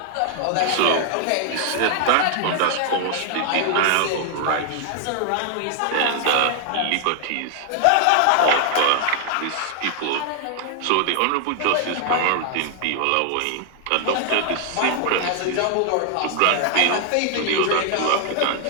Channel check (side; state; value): both; different; correlation 0.00